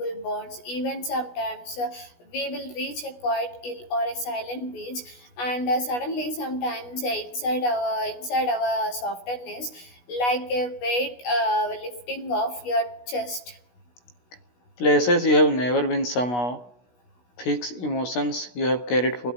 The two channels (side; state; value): right; late; 16 ms